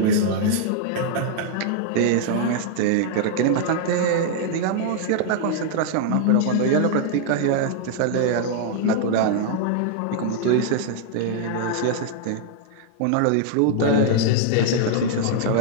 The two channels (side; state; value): both; different; correlation -0.01